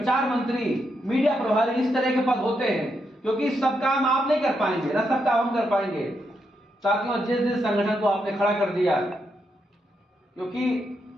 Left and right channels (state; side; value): normal; both; correlation 0.81